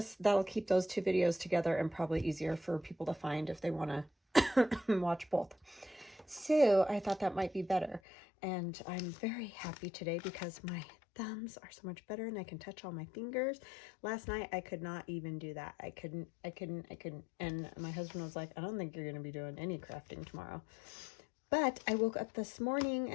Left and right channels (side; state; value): right; drops out; at 8.0 s